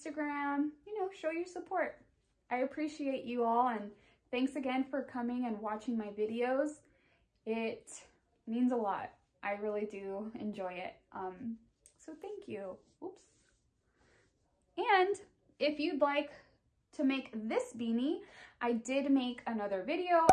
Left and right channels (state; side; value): identical; both; correlation 1.00